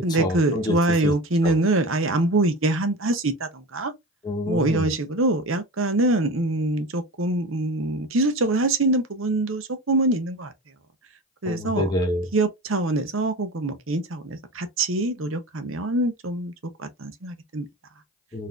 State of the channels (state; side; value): normal; both; correlation 0.31